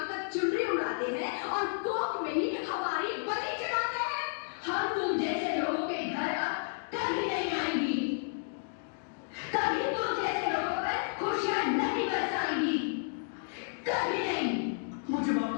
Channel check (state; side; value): silent; right; digital silence